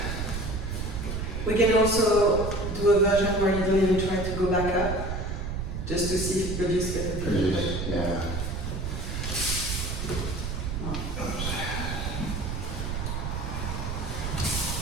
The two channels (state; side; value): noise; right; rumble, 3 dB below the sound